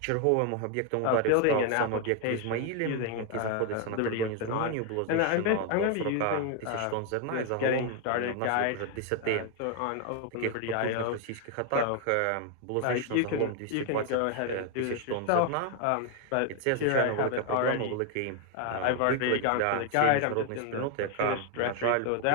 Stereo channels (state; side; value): different; both; correlation 0.01